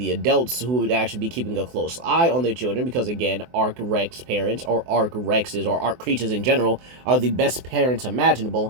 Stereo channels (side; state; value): left; late; 24 ms